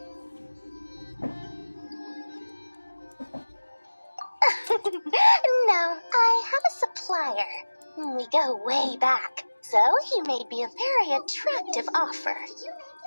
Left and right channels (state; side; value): inverted; both; correlation -1.00